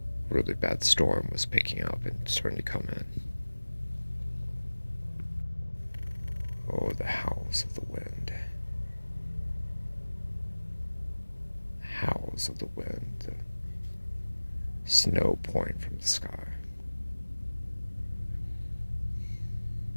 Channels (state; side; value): inverted; both; correlation -1.00